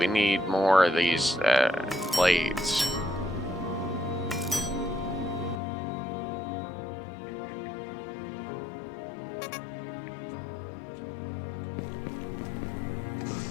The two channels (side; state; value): right; drops out; at 5.6 s